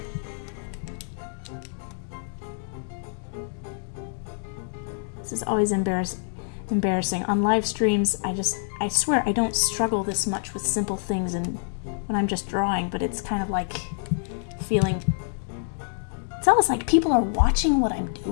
This is always embarrassing. On live streams, I swear I don't struggle this much with simple things and when I'm just drawing, but it's kind of like feeling, it's almost like people are watching what I'm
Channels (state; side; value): silent; right; digital silence